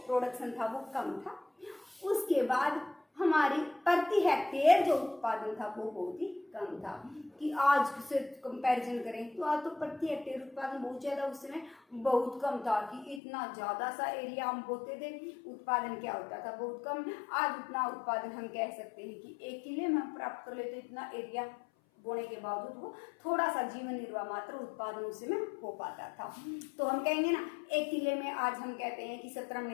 प्रोडक्शन था वो कम था। उसके बाद हमारी प्रति हेक्टेयर जो उत्पादन था वो बहुत ही कम था। कि आज से कंपैरिजन करें तो आज तो प्रति हेक्टेयर उत्पादन बहुत ज्यादा, उस समय बहुत कम था, कि इतना ज्यादा सा एरिया हम बोते थे, उत्पादन क्या होता था, बहुत कम। आज उतना उत्पादन हम कह सकते हैं कि 1 किले में हम प्राप्त कर लेते, इतना एरिया बोने के बावजूद वो थोड़ा सा जीवन निर्वाह मात्र उत्पादन उसमें हो पाता था। तो हम कहेंगे ना 1 किले में आज हम कहते हैं कि 17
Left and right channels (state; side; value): drops out; right; at 13.2 s